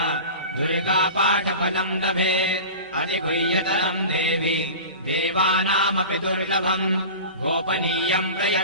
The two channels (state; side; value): inverted; both; correlation -0.34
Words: दुर्गापाठफलम् लभेत् अधिगुह्यतरम् देवि देवानामपि दुर्लभम् गोपनीयम्